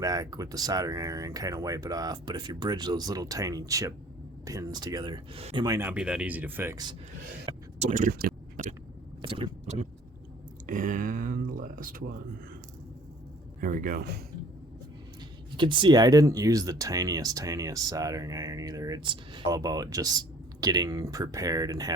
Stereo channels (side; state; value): both; normal; correlation 0.53